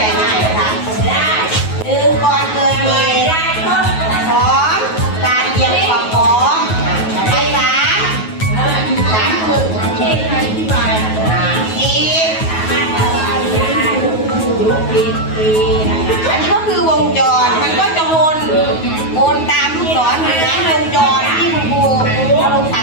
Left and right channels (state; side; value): late; right; 9.3 ms